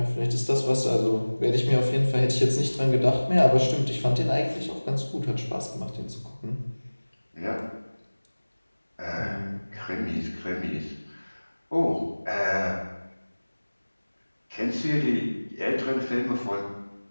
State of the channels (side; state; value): both; inverted; correlation -1.00